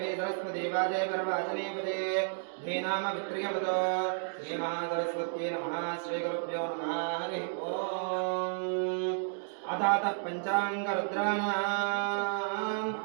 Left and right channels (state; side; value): silent; left; digital silence